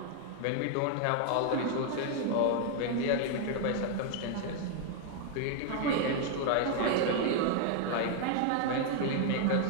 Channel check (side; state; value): both; different; correlation 0.00